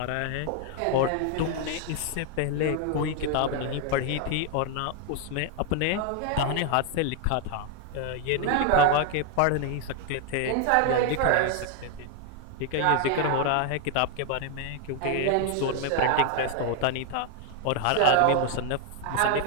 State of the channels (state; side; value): different; both; correlation 0.00